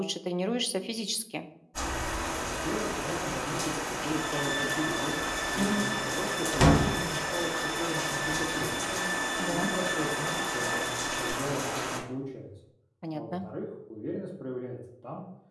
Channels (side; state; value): both; identical; correlation 1.00